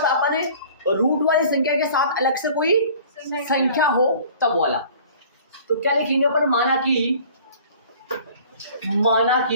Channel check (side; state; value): both; inverted; correlation -0.48